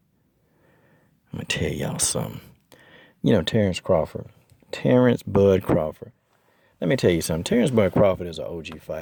I'm going to tell y'all something. You know, Terence Crawford. Terence Bud Crawford. Let me tell you something. Terence Bud Crawford is an OG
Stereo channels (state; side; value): identical; both; correlation 1.00